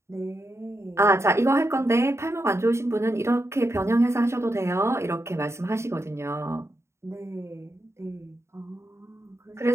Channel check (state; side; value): late; left; 0.13 ms